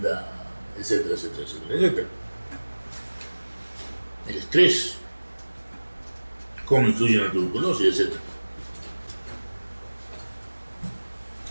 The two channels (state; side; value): inverted; both; correlation -1.00